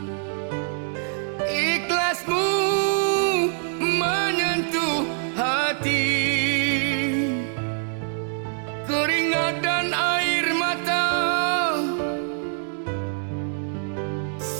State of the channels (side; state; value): left; silent; digital silence